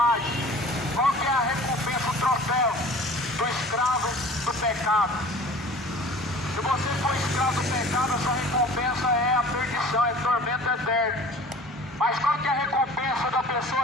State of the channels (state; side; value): normal; both; correlation 0.44